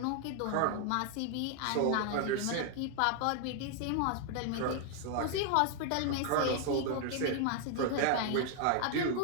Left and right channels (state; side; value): different; both; correlation 0.00